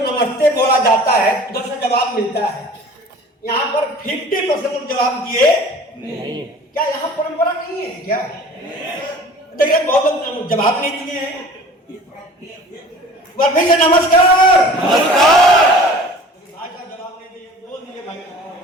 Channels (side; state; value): both; normal; correlation 0.45